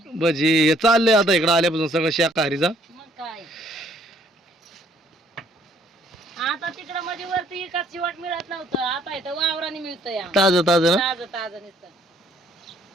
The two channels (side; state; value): both; normal; correlation 0.63